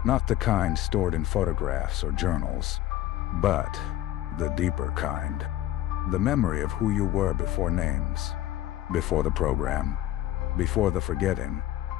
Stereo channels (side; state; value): right; quieter; 13.9 dB